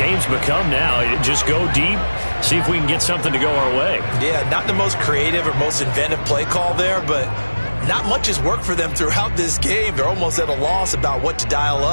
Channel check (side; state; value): both; inverted; correlation -1.00